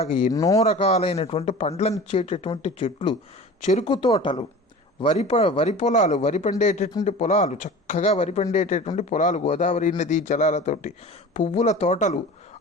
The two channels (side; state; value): both; normal; correlation 0.38